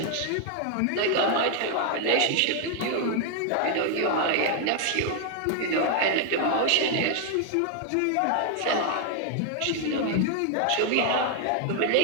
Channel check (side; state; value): both; different; correlation 0.00